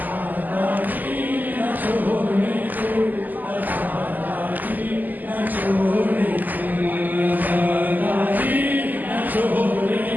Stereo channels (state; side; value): late; left; 0.084 ms